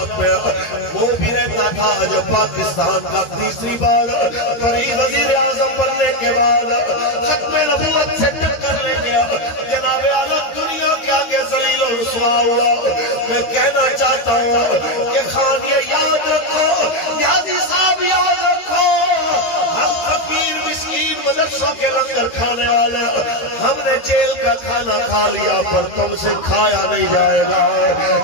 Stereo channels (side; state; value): right; late; 13 ms